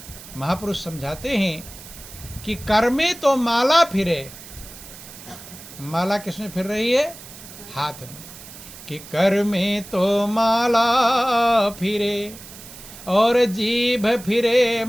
महापुरुष समझाते हैं कि कर्मे तो माला फिरे। माला किसमें फिर रही है? हाथ में। कि कर्मे तो माला फिरे और जीभ फिरे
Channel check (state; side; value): noise; right; hiss, 16 dB below the sound